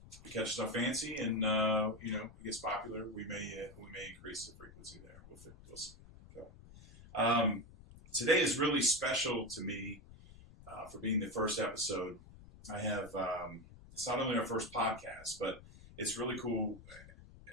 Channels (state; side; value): noise; left; rumble, 19 dB below the sound